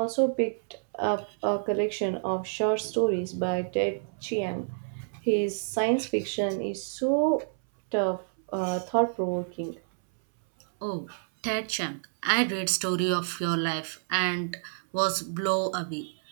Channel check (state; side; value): silent; left; 58 dB below the other